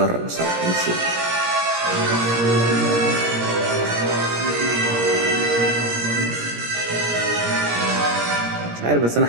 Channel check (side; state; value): left; late; 17 ms